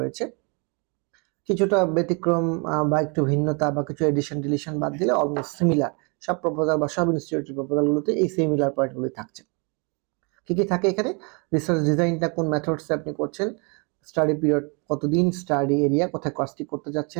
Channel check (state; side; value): quieter; left; 33.1 dB